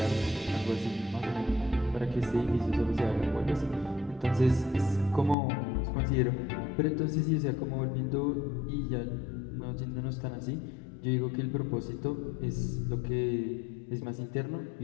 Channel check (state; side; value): drops out; right; at 5.4 s